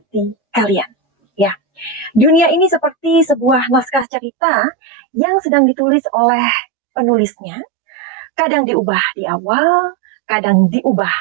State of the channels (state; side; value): drops out; left; at 4.0 s